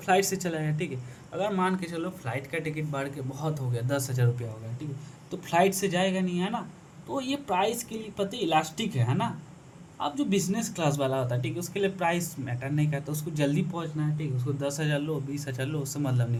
से चला गया, ठीक है। अगर मान के चलो फ्लाइट का टिकट बढ़ के बहुत हो गया, 10,000 रुपया हो गया, ठीक है, तो फ्लाइट से जाएगा नहीं, है ना। तो ये प्राइस के लिए पता इलास्टिक है ना। अब जो बिजनेस क्लास वाला होता है, ठीक है, उसके लिए प्राइस मैटर नहीं करता, उसको जल्दी पहुंचना है, ठीक है। उसको 10,000 लो 20,000 लो उससे मतलब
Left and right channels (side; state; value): both; identical; correlation 1.00